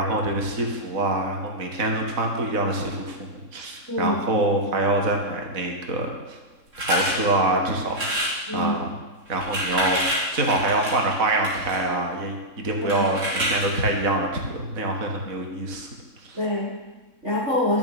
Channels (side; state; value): left; late; 3.6 ms